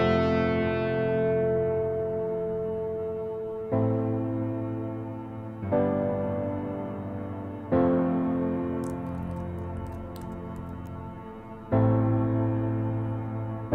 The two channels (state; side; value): identical; both; correlation 1.00